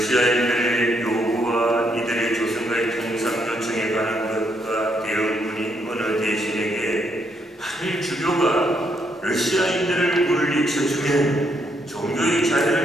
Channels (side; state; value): both; normal; correlation 0.75